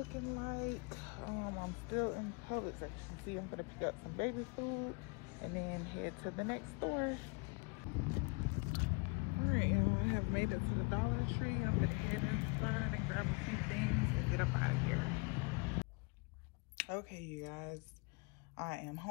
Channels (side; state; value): right; quieter; 30.9 dB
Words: like. I'm still in Publix. As you can see, I'm gonna pick up some baby food and then head to the next store. Alright, y'all, I have made it to the Dollar Tree. I'm gonna head inside and grab a few things and get up out of here. Okay, you guys, I am